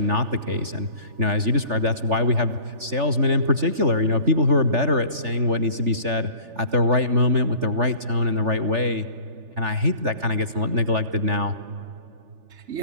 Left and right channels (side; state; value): left; late; 3.4 ms